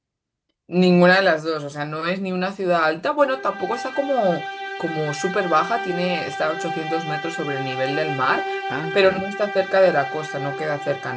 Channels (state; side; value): identical; both; correlation 1.00